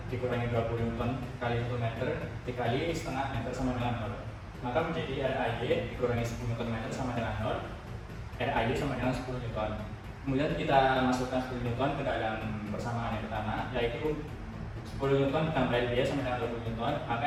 dikurangi 20 Nm kali 1 meter dikali setengah meter sama dengan 0. Maka menjadi RAY dikurangi 10 Nm sama dengan 0. RAY sama dengan 10 Newton. Kemudian kita masukkan 10 Newton ke dalam persamaan yang pertama, yaitu 10 Newton ditambah RBY sama dengan 20 Newton, maka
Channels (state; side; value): identical; both; correlation 1.00